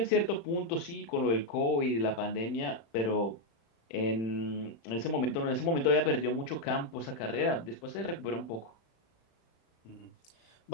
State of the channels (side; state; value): right; late; 35 ms